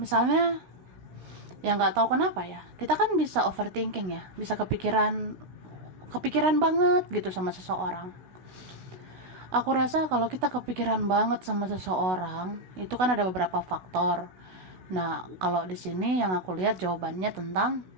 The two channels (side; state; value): left; late; 16 ms